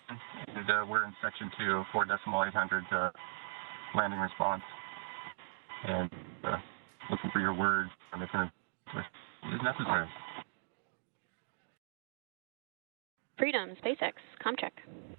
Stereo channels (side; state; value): left; silent; digital silence